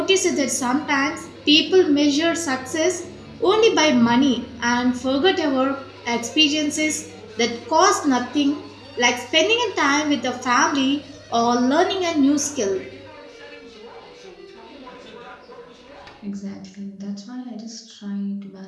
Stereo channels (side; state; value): both; identical; correlation 1.00